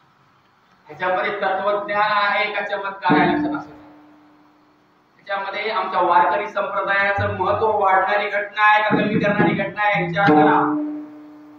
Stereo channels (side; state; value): both; identical; correlation 1.00